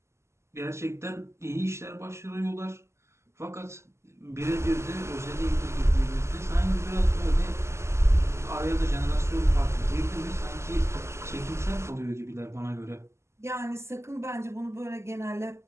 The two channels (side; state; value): left; late; 0.13 ms